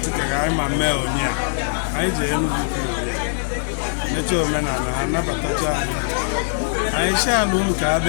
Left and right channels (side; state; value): right; silent; digital silence